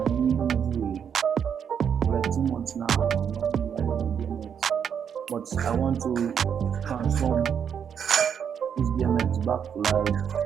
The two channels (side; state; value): left; quieter; 7.8 dB